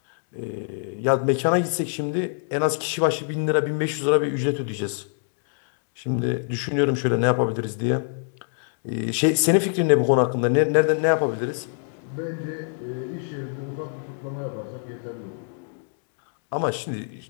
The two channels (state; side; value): silent; right; digital silence